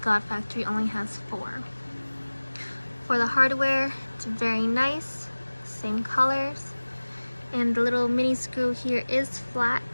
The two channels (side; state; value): both; inverted; correlation -1.00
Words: Factory only has 4. For the hardware, it's very nice, same colors. And the little mini screw here is flat,